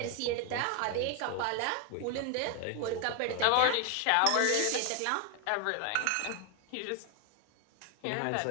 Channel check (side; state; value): both; different; correlation 0.00